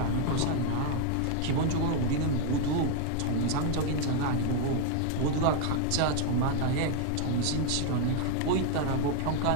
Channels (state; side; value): different; both; correlation 0.00